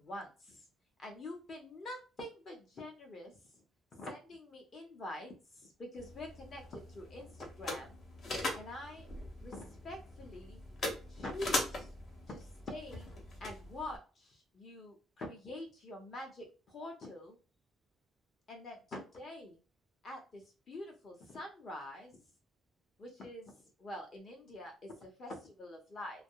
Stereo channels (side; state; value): both; normal; correlation 0.71